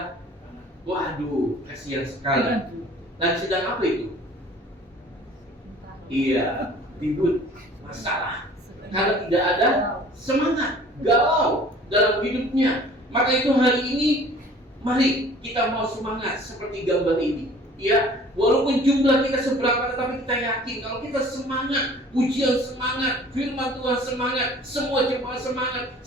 waduh, kasihan sekali. Dan sedang apa itu? Iya, ribut, masalah. Karena tidak ada semangat, galau dalam hidupnya. Maka itu hari ini, mari kita mau semangat seperti gambar ini. Ya, walaupun jumlah kita seberapa, tetapi kita yakin kalau kita semangat, pujian semangat, firman Tuhan semangat, semua jemaat semangat,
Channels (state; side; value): normal; both; correlation 0.49